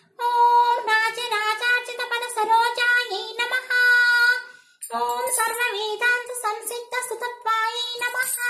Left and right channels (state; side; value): identical; both; correlation 1.00